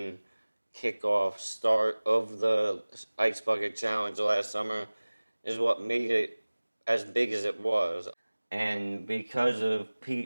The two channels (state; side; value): inverted; both; correlation -1.00